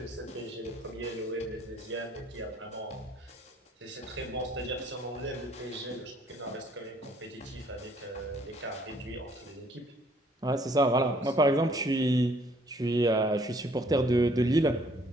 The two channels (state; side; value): normal; both; correlation 0.62